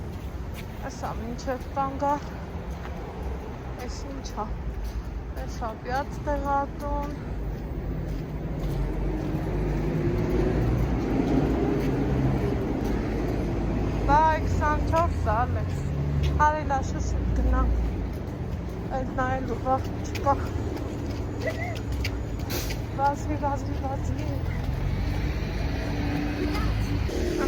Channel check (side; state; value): both; identical; correlation 1.00